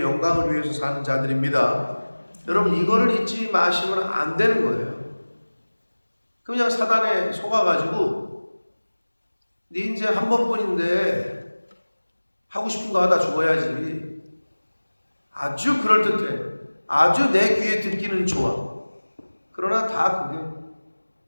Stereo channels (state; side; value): inverted; both; correlation -1.00